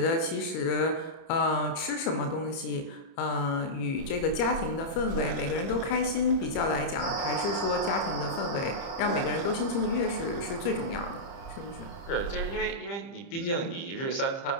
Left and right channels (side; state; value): right; late; 30 ms